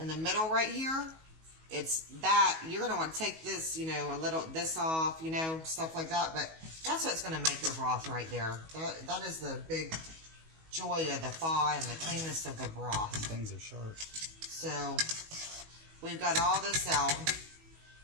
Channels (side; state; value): left; late; 19 ms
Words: the middle right here, it's that. You're going to want to take this, you know, this off, you know, stuff like that. But that's what's going to make your broth right there. That is the big joy of the thaw and the cleanness of the broth. Things are sharp. So, we've got all this out.